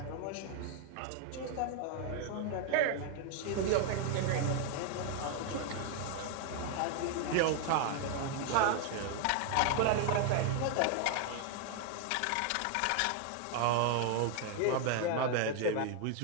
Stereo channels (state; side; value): different; both; correlation 0.00